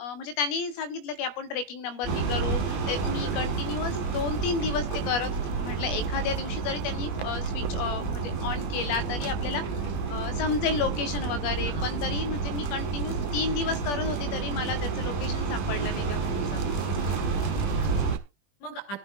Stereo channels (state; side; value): late; right; 21 ms